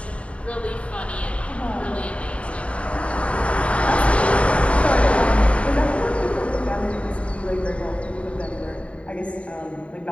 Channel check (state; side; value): late; right; 0.063 ms